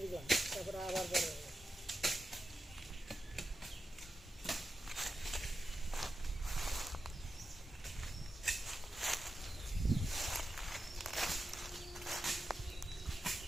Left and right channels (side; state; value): both; normal; correlation 0.90